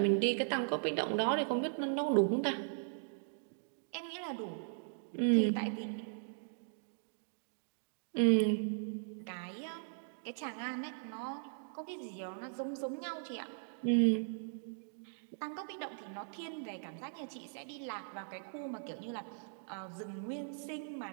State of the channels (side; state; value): left; silent; digital silence